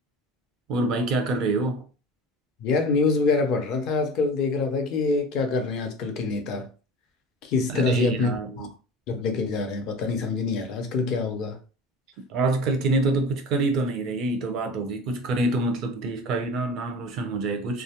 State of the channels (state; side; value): normal; both; correlation 0.36